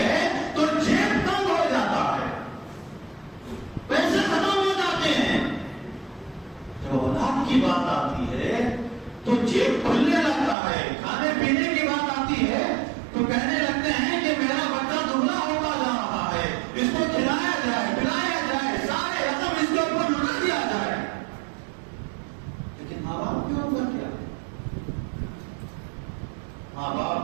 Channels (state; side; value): drops out; left; at 10.6 s